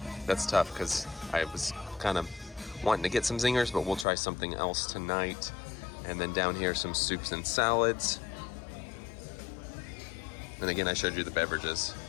because I was kind of wanting to get some Zingers, but we'll try something else tonight. And then down here, some soups and salads. And again, I showed you the beverages.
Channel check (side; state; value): right; drops out; at 4.0 s